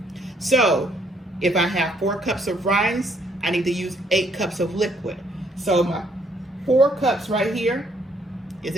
So if I have 4 cups of rice, I need to use 8 cups of liquid. So my 4 cups right here is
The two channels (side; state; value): both; normal; correlation 0.68